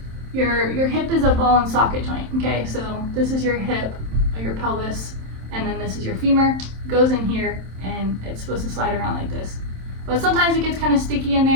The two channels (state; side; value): late; left; 27 ms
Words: your hip is a ball and socket joint. Okay, so this is your hip or your pelvis, and then this is your femur. It goes in here, and it's supposed to slide around like this. But sometimes it gets kind of sticky in